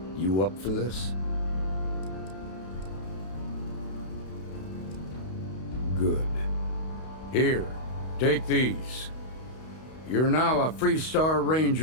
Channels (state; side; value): late; right; 32 ms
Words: You up for this? Good. Here, take these. You're now a Freestar